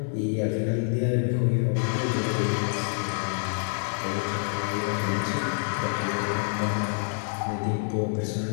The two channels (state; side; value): silent; right; 60 dB below the other